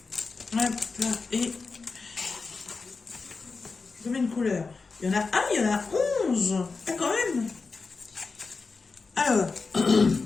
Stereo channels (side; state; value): right; quieter; 4.3 dB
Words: Hop là, et combien de couleurs? Il y en a un, il y en a 11. Ah, quand même. Alors,